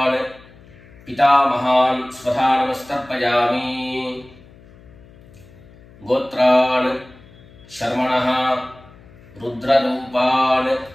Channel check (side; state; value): left; noise; hum, 24 dB below the sound